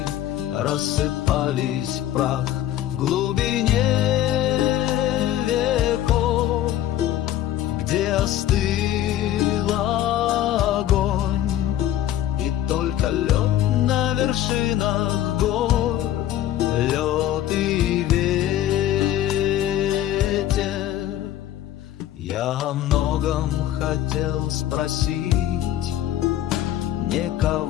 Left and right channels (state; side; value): quieter; right; 12.4 dB